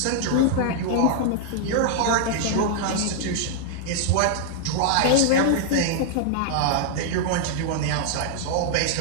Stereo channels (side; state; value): both; different; correlation -0.01